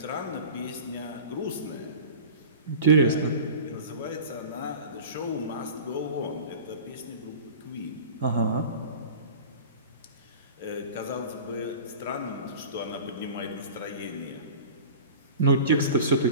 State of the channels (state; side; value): inverted; both; correlation -0.36